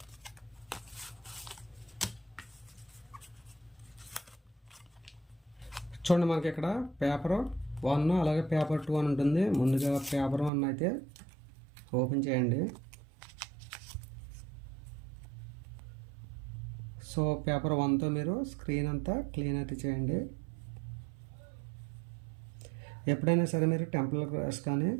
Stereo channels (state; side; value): drops out; left; at 10.5 s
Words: చూడండి, మనకి ఇక్కడ పేపర్ 1 అలాగే పేపర్ 2 అని ఉంటుంది. ముందుగా పేపర్ 1 అయితే ఓపెన్ చేయండి. సో పేపర్ 1తో మీరు స్క్రీన్ అంతా క్లీన్ అయితే చేయండి. ఎప్పుడైనా సరే మీరు టెంపర్ గ్లాస్ కానీ